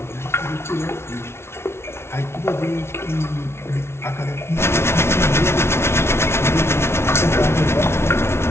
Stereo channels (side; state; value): right; late; 0.12 ms